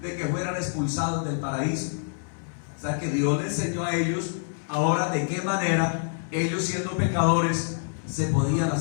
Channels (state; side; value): silent; right; digital silence